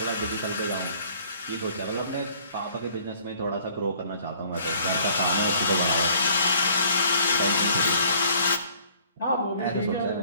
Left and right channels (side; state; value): both; inverted; correlation -0.57